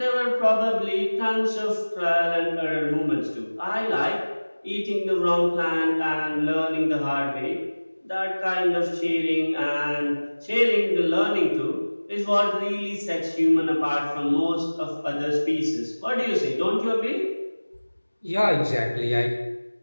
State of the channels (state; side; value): inverted; both; correlation -1.00